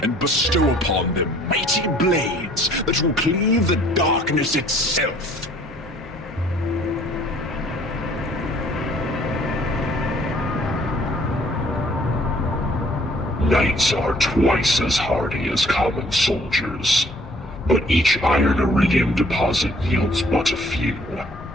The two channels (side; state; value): both; normal; correlation 0.58